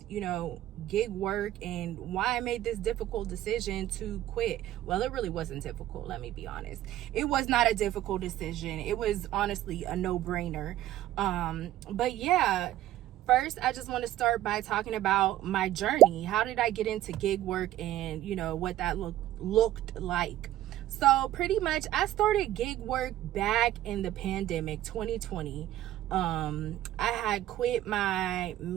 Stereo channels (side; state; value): left; quieter; 13.7 dB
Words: gig work and why I made this difficult decision to quit. Well, it really wasn't difficult, let me be honest. It was not a difficult decision. It was honestly a no-brainer. But yeah. First, I just want to start by talking about my journey. How did I get into gig work and, what that looked like? So pretty much I started gig work back in the pandemic, 2020. I had quit my